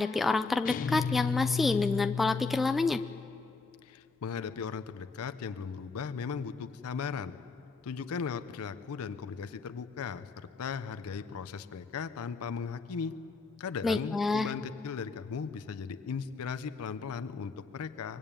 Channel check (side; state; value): right; quieter; 4.2 dB